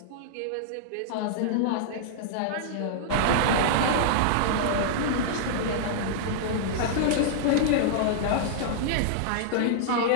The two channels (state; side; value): different; both; correlation -0.02